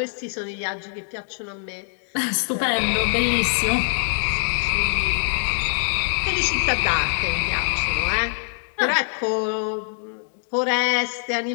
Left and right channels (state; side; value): silent; right; digital silence